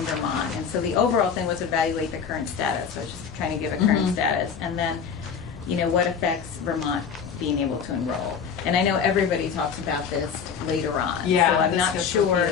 And so the overall thing was evaluate the current status. So I was just trying to give a current status. And then, you know, what affects Vermont being able to enroll. And I know everybody talks about this later on. Yeah, so I'm this not gets sure.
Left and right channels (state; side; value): quieter; right; 6.7 dB